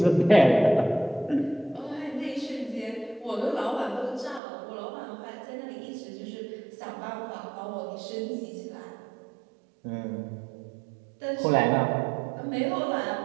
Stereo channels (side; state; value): left; drops out; at 4.4 s